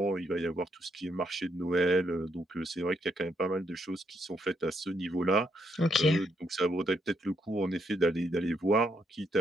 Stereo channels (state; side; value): normal; both; correlation 0.76